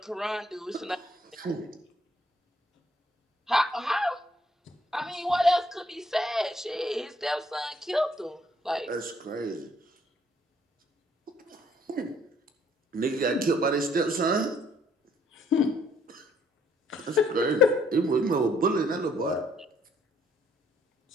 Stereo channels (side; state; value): both; normal; correlation 0.66